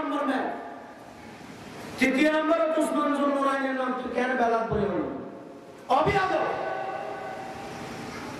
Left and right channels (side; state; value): both; identical; correlation 1.00